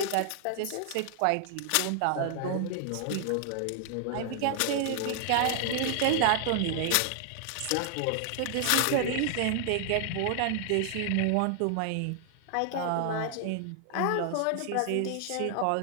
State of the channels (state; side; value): different; both; correlation 0.00